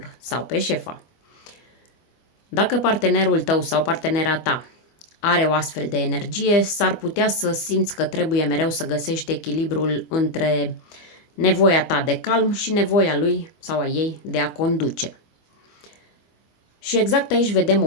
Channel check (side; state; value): right; late; 25 ms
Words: sau pe șefa. Dacă partenerul tău sau partenera ta are o astfel de energie, s-ar putea să simți că trebuie mereu să găsești echilibrul între nevoia ta de calm și nevoia lui sau a ei de a conduce. Și exact aici vedem o